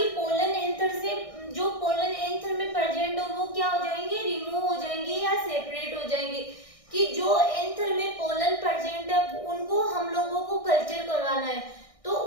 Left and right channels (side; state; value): right; late; 1.6 ms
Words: पोलन एंथर से जो पोलन एंथर में प्रेजेंट हो वो क्या हो जाएंगे, रिमूव हो जाएंगे या सेपरेट हो जाएंगे। कि जो एंथर में पोलन प्रेजेंट है उनको हम लोगों को कल्चर करवाना है, तो